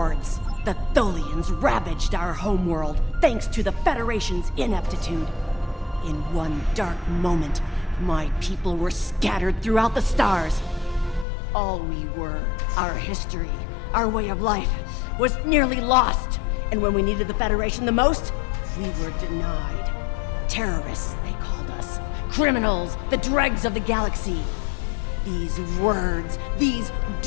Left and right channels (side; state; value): right; drops out; at 11.2 s